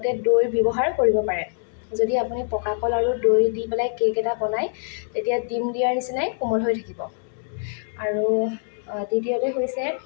দৈ ব্যৱহাৰ কৰিব পাৰে। যদি আপুনি পকা কল আৰু দৈ দি পেলাই কেক এটা বনায়, তেতিয়া ডিম দিয়াৰ নিচিনাই কোমল হৈ থাকিব। আৰু দ্বিতীয়তে হৈছে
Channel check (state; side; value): silent; right; 63 dB below the other